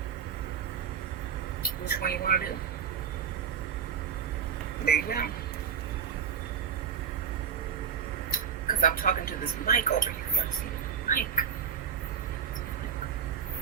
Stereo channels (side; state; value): left; quieter; 7.3 dB